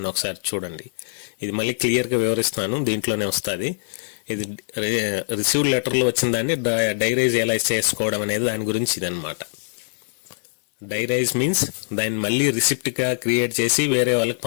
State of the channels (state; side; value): silent; right; digital silence